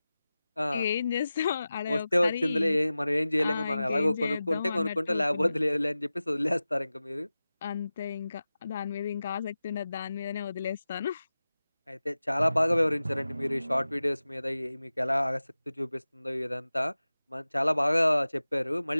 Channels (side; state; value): both; inverted; correlation -0.95